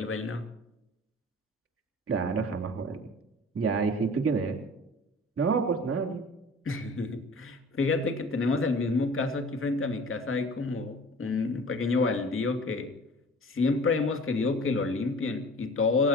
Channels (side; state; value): both; normal; correlation 0.43